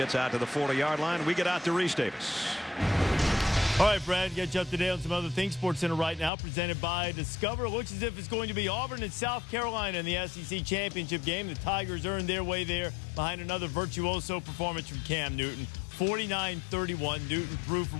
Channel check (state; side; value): drops out; right; at 6.3 s